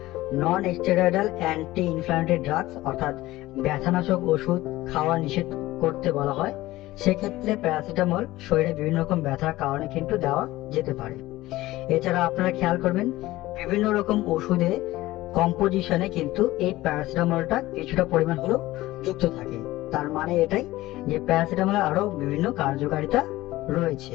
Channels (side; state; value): right; quieter; 17.5 dB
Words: non steroidal anti inflammatory drugs অর্থাৎ ব্যথানাশক ওষুধ খাওয়া নিষেধ করতে বলা হয়, সেক্ষেত্রে প্যারাসিটামল শরীরে বিভিন্ন রকম ব্যথার কারণে কিন্তু দেওয়া যেতে পারে। এছাড়া আপনারা খেয়াল করবেন বিভিন্ন রকম ওষুধে কম্পোজিশনে কিন্তু এই প্যারাসিটামলটা কিছুটা পরিমাণ হলেও যুক্ত থাকে। তার মানে এটাই যে প্যারাসিটামলের আরো বিভিন্ন কার্যকারিতা